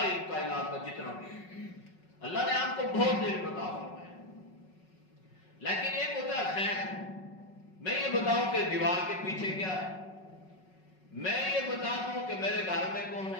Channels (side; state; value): right; late; 5.4 ms